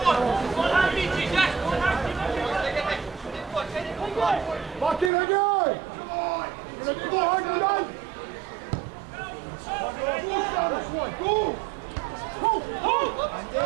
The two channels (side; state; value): left; drops out; at 5.1 s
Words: Hogarth's goal kick. Keeper is the target. O'Ware wins it,